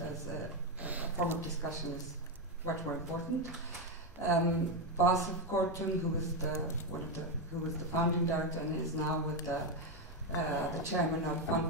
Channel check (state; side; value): normal; both; correlation 0.07